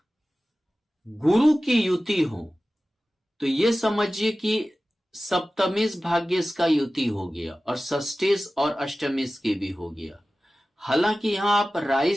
गुरु की युति हो तो ये समझिए कि सप्तमेश भाग्येश का युति हो गया और षष्ठेश और अष्टमेश के भी हो गया। हालांकि यहां आप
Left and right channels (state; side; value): normal; both; correlation 0.96